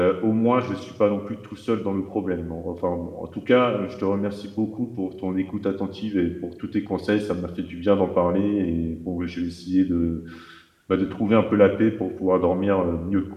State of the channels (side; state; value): both; identical; correlation 1.00